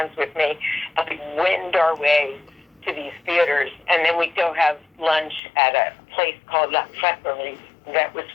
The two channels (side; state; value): right; drops out; at 5.4 s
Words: with me, and we'd wind our way to these theaters, and then we'd go have lunch at a place called La Creperie that was